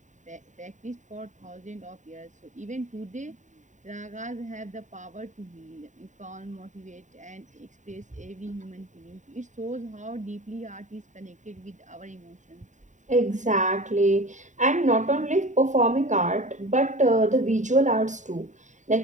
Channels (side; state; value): left; late; 0.36 ms